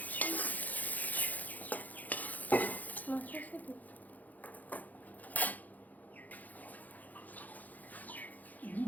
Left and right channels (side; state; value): right; late; 0.081 ms